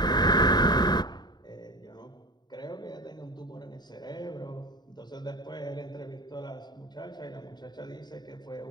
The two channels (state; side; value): late; right; 0.20 ms